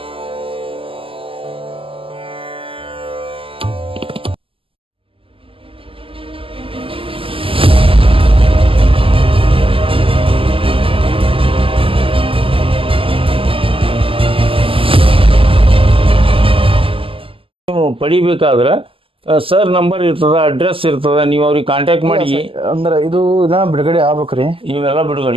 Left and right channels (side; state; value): left; late; 0.26 ms